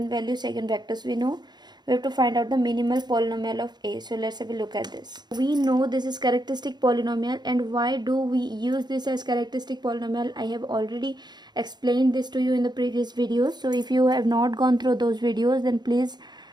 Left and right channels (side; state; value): left; late; 0.21 ms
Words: eigenvectors we know. We have to find out the minimal polynomial of A. So let's have a look at this. We know this is characteristic polynomial, and why do we use this as characteristic polynomial? I have already explained this to you in the previous videos. So if you have not gone through those videos, then please